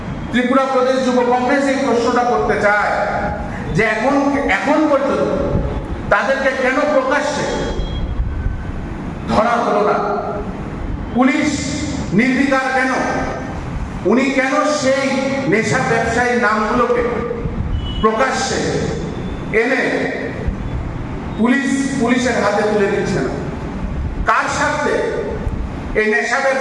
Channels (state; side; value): identical; both; correlation 1.00